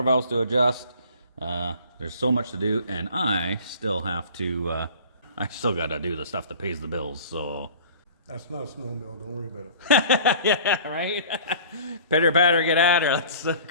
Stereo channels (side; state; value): both; inverted; correlation -0.46